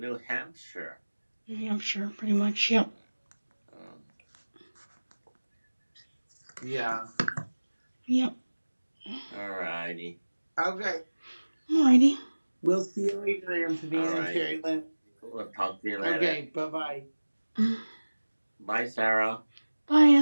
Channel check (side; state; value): both; inverted; correlation -1.00